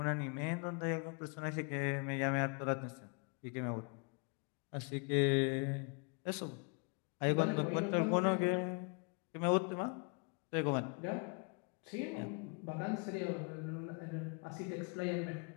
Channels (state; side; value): quieter; right; 34.1 dB